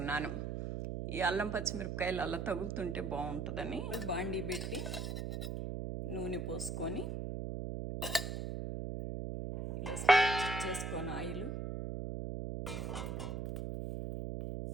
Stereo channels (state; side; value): noise; right; hum, 3 dB below the sound